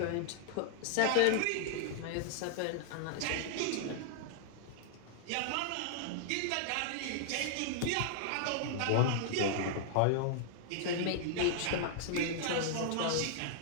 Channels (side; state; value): both; different; correlation -0.01